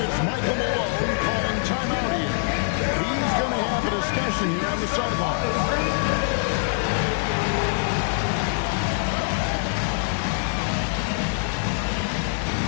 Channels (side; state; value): right; silent; 62 dB below the other